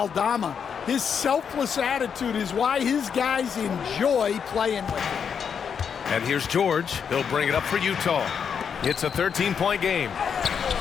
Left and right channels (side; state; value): right; quieter; 7.0 dB